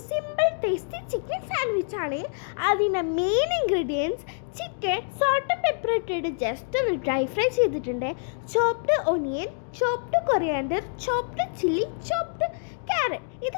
സിമ്പിൾ ടേസ്റ്റി ചിക്കൻ സാൻഡ്വിച്ച് ആണ്. അതിൻ്റെ main ingredients chicken salt pepper ഇട്ടിട്ട് ജസ്റ്റ് ഒന്ന് ഡ്രൈ ഫ്രൈ ചെയ്തിട്ടുണ്ട്, chopped onion, chopped coriander, chopped chilli, chopped carrot. ഇത്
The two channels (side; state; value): right; silent; 61 dB below the other